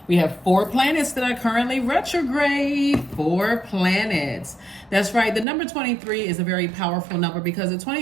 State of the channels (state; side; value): drops out; left; at 5.5 s